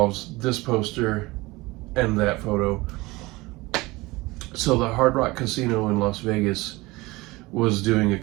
this poster and that photo. So the Hard Rock Casino in Las Vegas was doing a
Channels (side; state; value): left; quieter; 21.8 dB